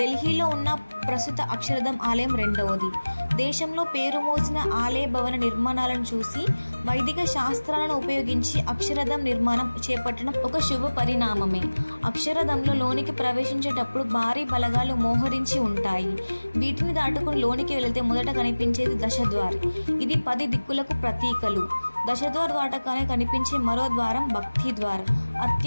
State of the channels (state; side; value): inverted; both; correlation -1.00